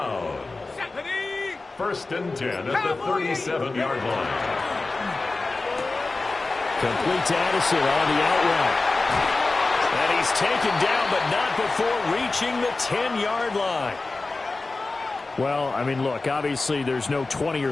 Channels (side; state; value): right; quieter; 3.5 dB